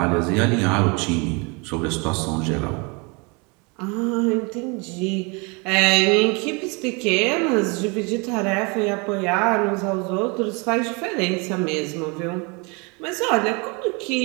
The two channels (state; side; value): quieter; left; 30.3 dB